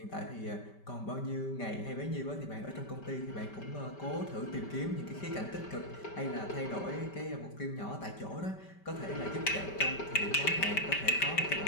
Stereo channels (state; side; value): late; right; 5.1 ms